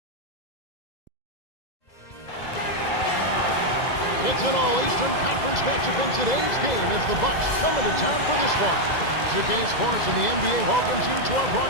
It's an all-Eastern Conference matchup in today's game as the Bucks come into town for this one. 2K Sports and the NBA welcomes you to our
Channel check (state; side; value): late; right; 2.0 ms